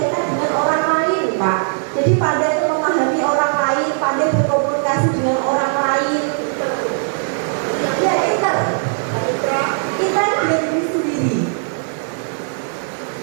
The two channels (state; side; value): silent; left; digital silence